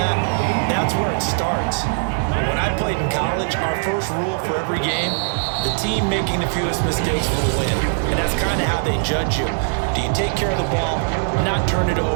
that's where it starts. When I played in college, our first rule for every game, the team making the fewest mistakes will win. And that's kind of how they judge you. Do you take care of the ball, not turn it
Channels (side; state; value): left; silent; digital silence